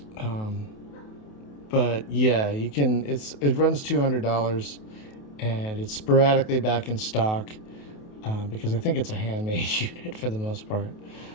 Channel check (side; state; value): right; late; 28 ms